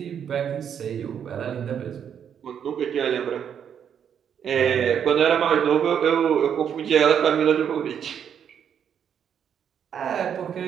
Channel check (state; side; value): quieter; left; 8.3 dB